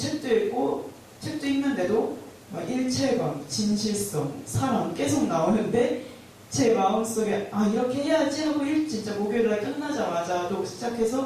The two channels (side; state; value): both; identical; correlation 1.00